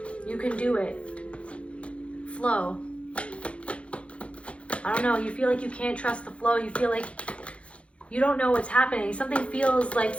You can do it. Flow. I don't know, you feel like you can't trust the flow. You feel like you don't know what's happening. Something feels like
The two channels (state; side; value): late; right; 0.061 ms